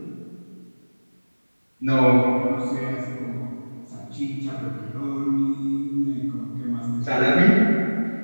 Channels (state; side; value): inverted; both; correlation -1.00